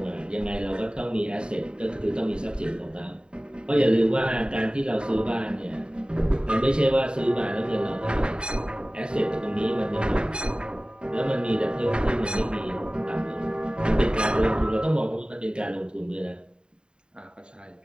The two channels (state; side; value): late; left; 0.050 ms